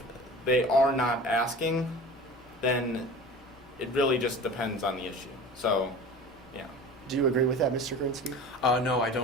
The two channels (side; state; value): both; normal; correlation 0.37